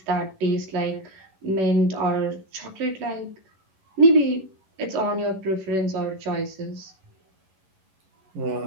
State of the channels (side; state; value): left; late; 11 ms